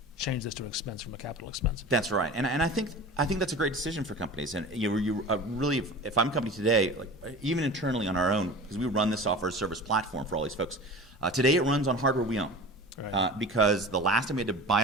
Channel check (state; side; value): normal; both; correlation 0.36